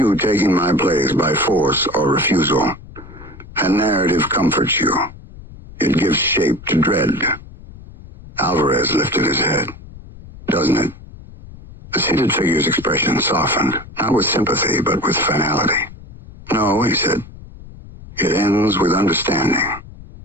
taking my place by force or refusal. A narrative comforts you. It gives shape to dread. Alvarez lifted his head. Doesn't it? The seated figure's expression softened, not with sympathy, but with finality. No, he said. It ends with understanding.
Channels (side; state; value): left; noise; rumble, 17 dB below the sound